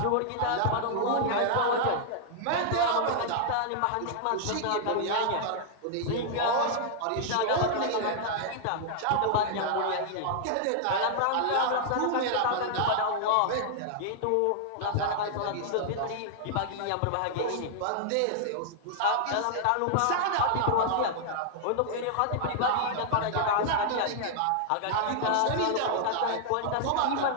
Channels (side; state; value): both; different; correlation -0.01